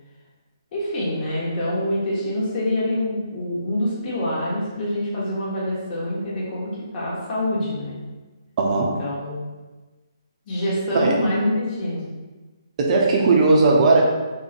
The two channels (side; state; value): both; inverted; correlation -0.72